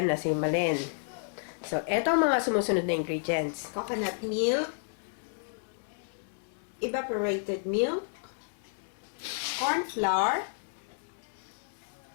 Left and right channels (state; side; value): silent; right; digital silence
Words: na si Malen. So, ito ang mga sumusunod na ingredients. Coconut milk, evaporated milk, corn flour,